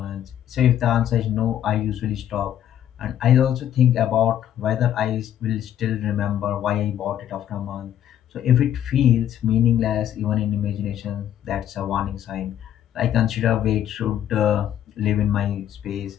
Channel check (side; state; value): right; quieter; 10.9 dB